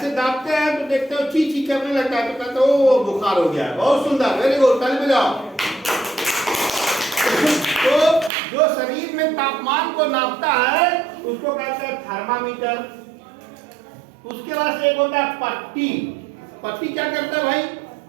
दाबते हैं तो देखते हो ची ची करने लगता है तो कहते हो बुखार हो गया। बहुत सुंदर, वेरी गुड, ताली बजाओ। तो जो शरीर में तापमान को नापता है उसको कहते हैं थर्मामीटर। उसके बाद से एक होता है पट्टी। पट्टी क्या करता है भाई?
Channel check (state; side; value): drops out; left; at 8.3 s